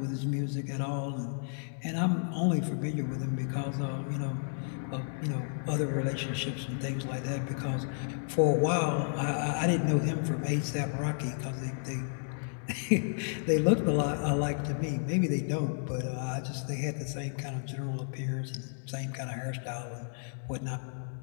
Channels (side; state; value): right; silent; digital silence